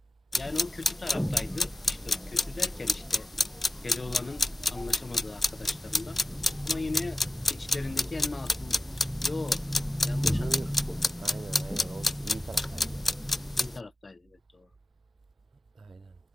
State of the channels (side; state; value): both; normal; correlation 0.94